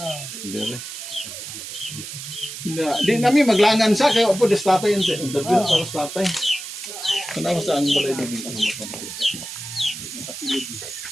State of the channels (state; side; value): noise; right; hiss, 9 dB below the sound